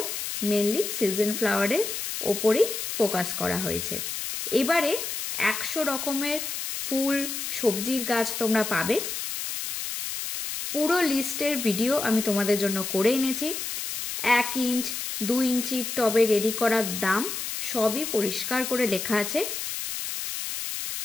মেনলি সিজন ফ্লাওয়ারের ওপরেই ফোকাস করা হয়েছে। এবারে 100 রকমের ফুল সবজির গাছ তোমরা পাবে। পুরো লিস্টের ভিডিও আমি তোমাদের জন্য করে এনেছি। 1 ইঞ্চ 2 ইঞ্চির টবে রেডি করার দাম সবই পরিষ্কার করে লেখা আছে।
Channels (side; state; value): left; noise; hiss, 5 dB below the sound